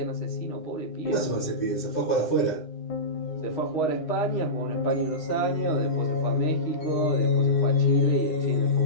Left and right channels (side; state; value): right; late; 9.8 ms